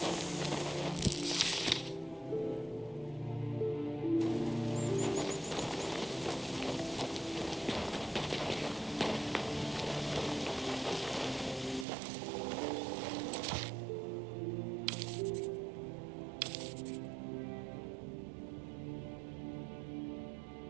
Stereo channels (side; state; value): left; drops out; at 11.9 s